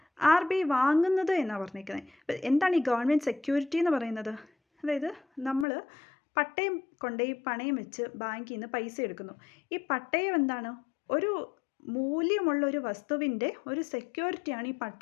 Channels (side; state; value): right; drops out; at 5.7 s